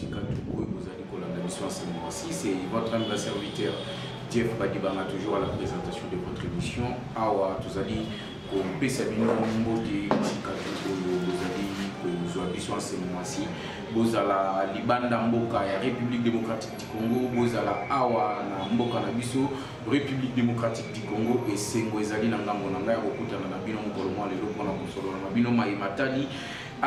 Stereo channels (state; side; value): identical; both; correlation 1.00